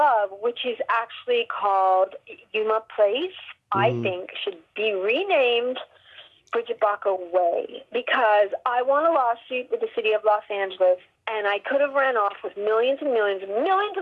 which is actually called Yuma Place, I think should be renamed Brigitte Bako Way, because I won a lawsuit with the city of Los Angeles, and I could have ran off with millions and millions and millions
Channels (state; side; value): identical; both; correlation 1.00